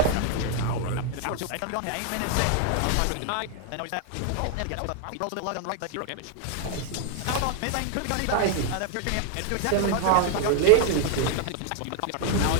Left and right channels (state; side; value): different; both; correlation 0.00